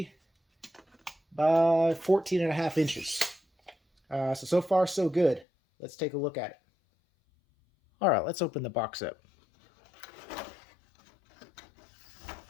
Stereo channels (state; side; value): drops out; right; at 5.5 s